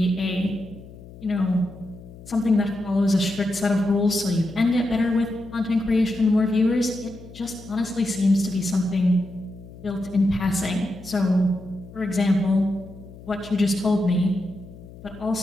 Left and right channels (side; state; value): left; noise; hum, 18 dB below the sound